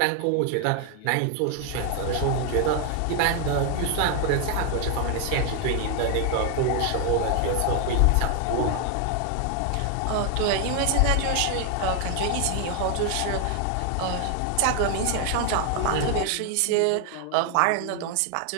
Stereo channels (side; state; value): both; different; correlation 0.01